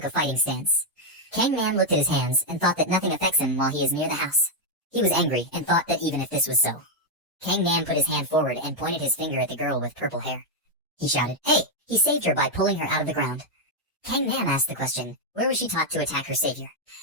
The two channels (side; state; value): both; normal; correlation 0.01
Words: a fighting stance. Kangman looked at his hands and thought that nothing affects him while he is near the house. He was angry and thought that even if this was so. Kangman put his hand forward and pointed his finger at the girl with purple hair. He shouted, "Hey!" He saved her by pulling her out of the ground. Kangman asked the question, where was she taught to attack her savior?